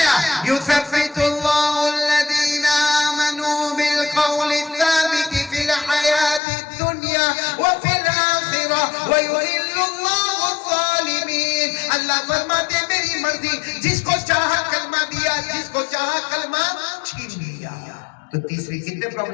یثبت اللہ الذین آمنوا بالقول الثابت فی الحیاۃ الدنیا وفی الآخرہ ویضل اللہ الظالمین. اللہ فرماتے میری مرضی، جس کو چاہا کلمہ دیا، جس کو چاہا کلمہ چھین لیا. تو تیسری کتنے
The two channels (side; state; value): right; drops out; at 6.4 s